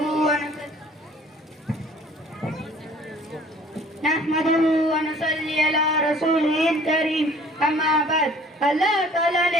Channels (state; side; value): normal; both; correlation 0.52